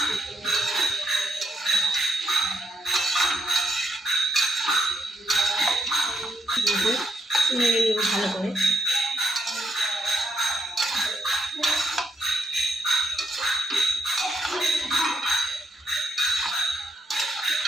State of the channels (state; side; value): normal; both; correlation 0.76